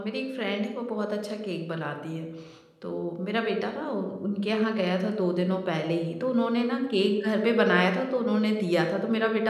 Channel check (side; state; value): both; identical; correlation 1.00